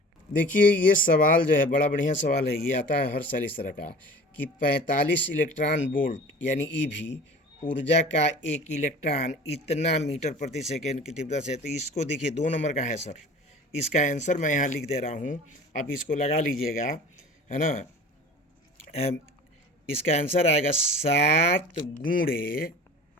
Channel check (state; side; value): normal; both; correlation 0.42